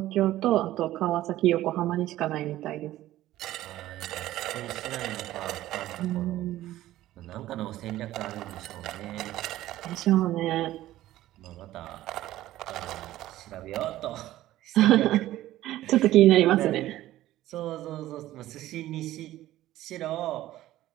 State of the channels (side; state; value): left; quieter; 14.8 dB